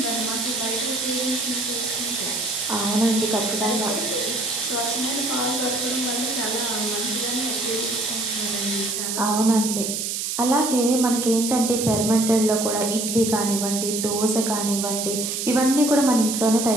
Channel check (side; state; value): right; noise; hiss, 2 dB below the sound